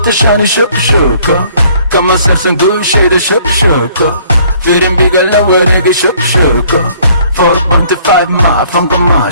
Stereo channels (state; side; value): inverted; both; correlation -0.59